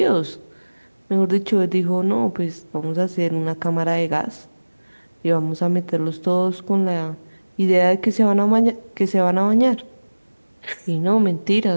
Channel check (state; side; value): inverted; both; correlation -1.00